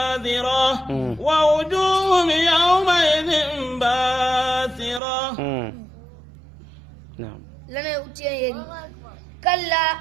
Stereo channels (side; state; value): left; drops out; at 5.0 s